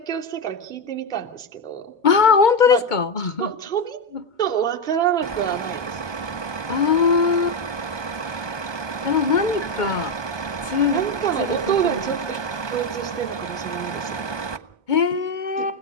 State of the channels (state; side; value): late; right; 1.2 ms